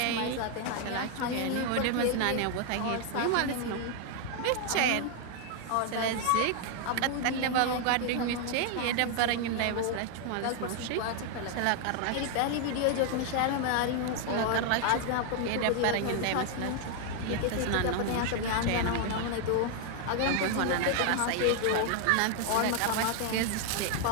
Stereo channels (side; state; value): both; different; correlation 0.00